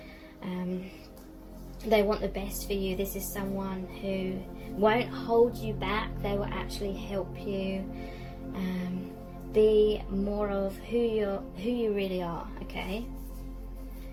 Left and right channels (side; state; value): both; identical; correlation 1.00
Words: They want the best for you. This is someone who won't hold you back. They will actually help you be more of who you really are. Okay,